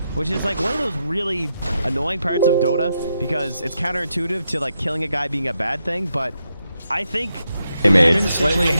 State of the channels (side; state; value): both; inverted; correlation -0.83